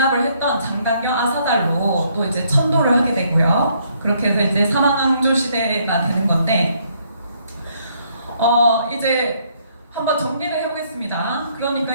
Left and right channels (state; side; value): inverted; both; correlation -0.69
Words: 했던 장단경 아사달로 또 이제 천도를 하게 되고요. 그렇게 해서 이제 사망왕조 시대가 되는 건데, 이제 한번 정리를 해보겠습니다.